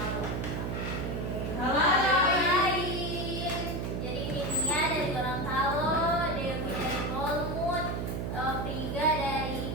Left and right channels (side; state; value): right; noise; hum, 2 dB below the sound